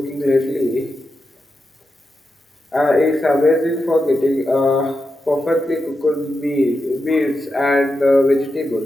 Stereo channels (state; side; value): normal; both; correlation 0.88